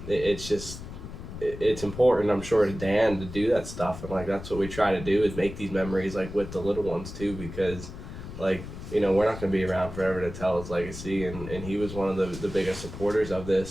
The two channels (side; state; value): left; noise; rumble, 11 dB below the sound